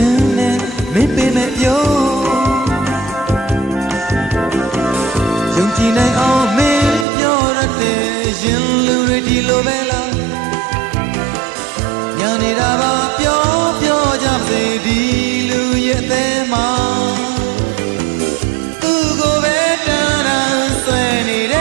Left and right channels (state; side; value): drops out; left; at 7.1 s